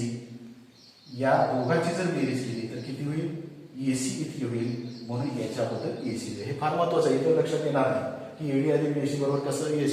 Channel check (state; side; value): identical; both; correlation 1.00